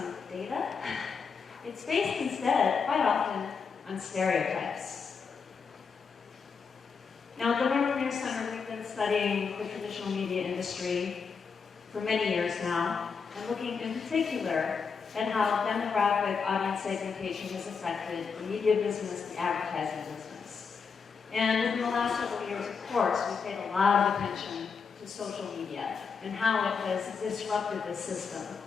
data. It's based instead, quite often, on stereotypes. Now, at the Vermeer Center, we've been studying the traditional media industry for many years now, and looking in particular at how demographic audience segmentation has affected the media business, the advertising business. And in the last several years, of course, we've paid a lot of attention to social media and how it has disrupted this system.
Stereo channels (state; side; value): quieter; right; 5.7 dB